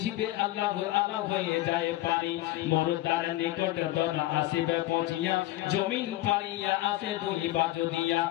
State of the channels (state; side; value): quieter; right; 16.4 dB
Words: আল্লাহর আলা হয়ে যায় পানি, মরদার নিকট দনা আসিবে পৌঁছিয়া, জমিন পাড়িয়া আসে 2 বাজু দিয়া,